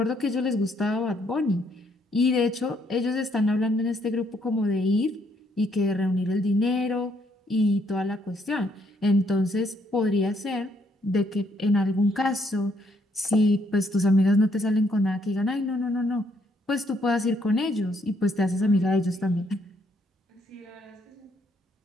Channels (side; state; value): both; normal; correlation 0.71